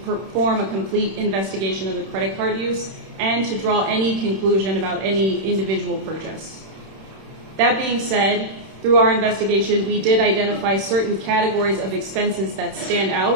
perform a complete investigation of the credit card use and to draw any conclusion about any individual purchase. That being said, through our investigation, we did identify certain categories of expenses that stand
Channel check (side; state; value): left; late; 31 ms